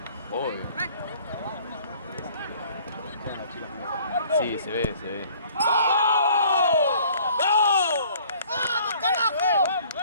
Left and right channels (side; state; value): both; inverted; correlation -0.55